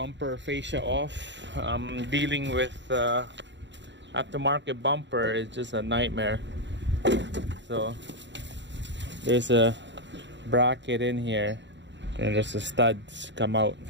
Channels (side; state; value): left; late; 0.52 ms